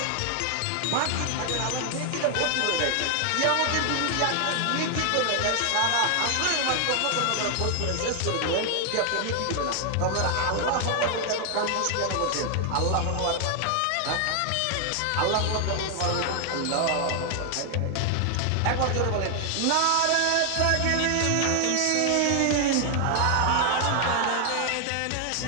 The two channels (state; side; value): different; both; correlation 0.00